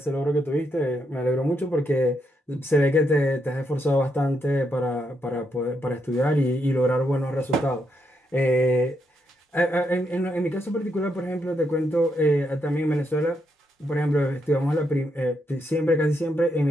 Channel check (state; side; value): normal; both; correlation 0.79